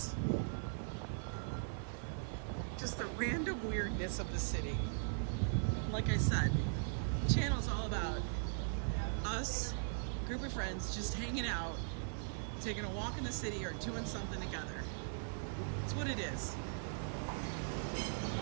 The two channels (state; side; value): silent; left; 51 dB below the other